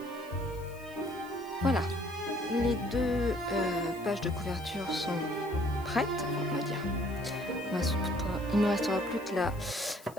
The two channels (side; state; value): left; noise; hiss, 22 dB below the sound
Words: Voilà, les deux pages de couverture sont prêtes, on va dire. Il ne me restera plus que la